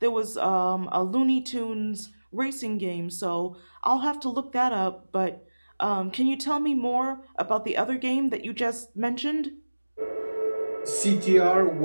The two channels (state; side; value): inverted; both; correlation -1.00